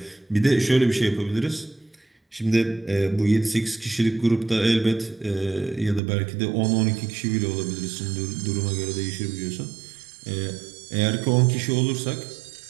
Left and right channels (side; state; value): left; drops out; at 6.0 s